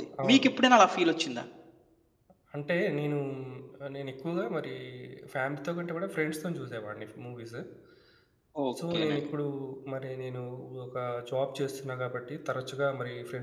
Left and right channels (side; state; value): both; identical; correlation 1.00